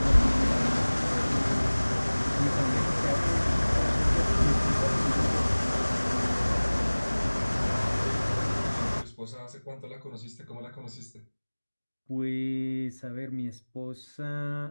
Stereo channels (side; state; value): both; inverted; correlation -1.00